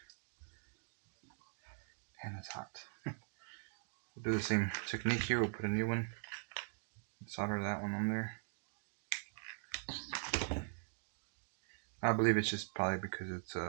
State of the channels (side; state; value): left; silent; digital silence